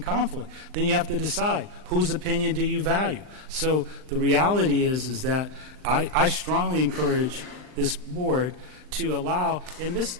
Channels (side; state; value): left; late; 39 ms